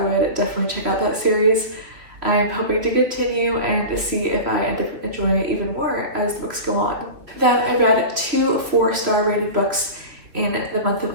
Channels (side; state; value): left; late; 3.3 ms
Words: definitely check out that series. I'm hoping to continue and to see if I end up enjoying it even more as the books go on. Then I read 2 4-star rated books in the month